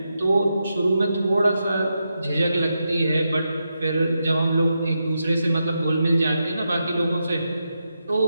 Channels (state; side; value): inverted; both; correlation -0.86